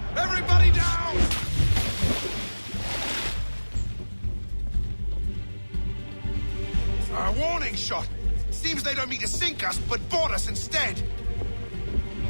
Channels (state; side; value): inverted; both; correlation -1.00